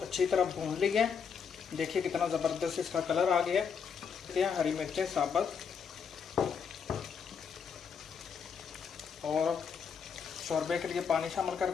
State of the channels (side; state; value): right; quieter; 6.6 dB